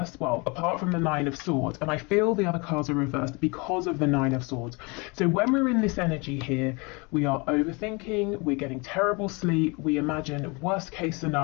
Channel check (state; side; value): quieter; right; 28.8 dB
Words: well, apart from the Nine of Swords, and I feel the other cards are reversed because of the Nine of Swords. So when we're in this energy here, we are overthinking, we're getting terrible sleep, we imagine worst case